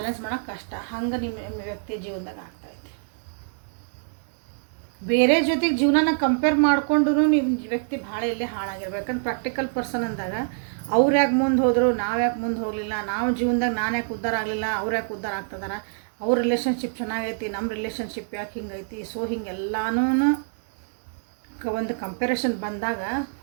ಮಾಡೋಕೆ ಕಷ್ಟ. ಹಂಗೆ ನಿಮ್ಮ ವ್ಯಕ್ತಿ ಜೀವನದಾಗ ಆಗ್ತಾಯಿದೆ. ಬೇರೆ ಜೊತೆಗೆ ಜೀವನನ ಕಂಪೇರ್ ಮಾಡಿಕೊಂಡು ನಿಮ್ಮ ವ್ಯಕ್ತಿ ಭಾಳ ಇಲ್ಲೇ ಹಾಳಾಗಿರ್ಬೇಕು. ಯಾಕಂದ್ರೆ ಪ್ರಾಕ್ಟಿಕಲ್ ಪರ್ಸನ್ ಅಂದಾಗ ಅವ್ರು ಯಾಕೆ ಮುಂದೆ ಹೋದರು, ನಾವು ಯಾಕೆ ಮುಂದೆ ಹೋಗಲಿಲ್ಲ, ನಾವು ಜೀವನದಾಗ ನಾನು ಯಾಕೆ ಉದ್ಧಾರ ಆಗಲಿಲ್ಲ, ಅವ್ರು ಯಾಕೆ ಉದ್ಧಾರ ಆಗ್ತದಾರ, ಅವ್ರ ರಿಲೇಷನ್ಶಿಪ್ ಚೆನ್ನಾಗೈತಿ, ನಮ್ಮ ರಿಲೇಷನ್ಶಿಪ್ ಯಾಕೆ ಹಿಂಗೈತಿ. ಸೊ ಹಿಂಗೆಲ್ಲನೂ ಒಂದು ಕಂಪ್ಯಾರಿಸನ್ ಬಂದಾಗ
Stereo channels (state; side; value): silent; left; 61 dB below the other